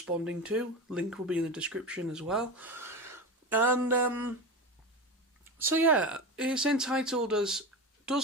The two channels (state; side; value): normal; both; correlation 0.23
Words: to. Link will be in the description as well. And so yeah, it's entitled as